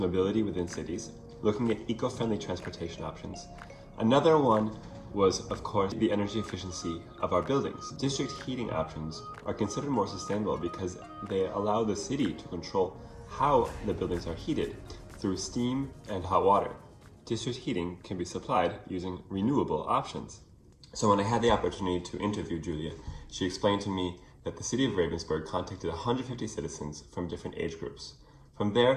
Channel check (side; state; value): both; identical; correlation 1.00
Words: within cities, looking at eco-friendly transportation options. Another one was, of course, the energy efficiency of our buildings. District heating options are considered more sustainable because they allow the city to control how the buildings are heated through steam and hot water. District heating can be supplied using renewable options. So when I had the opportunity to interview Julia, she explained to me that the city of Ravensburg contacted 150 citizens from different age groups. From